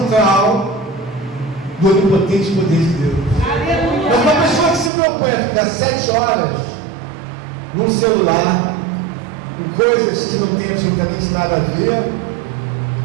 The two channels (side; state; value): left; drops out; at 4.9 s